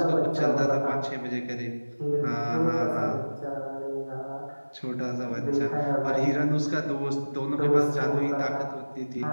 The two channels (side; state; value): both; inverted; correlation -1.00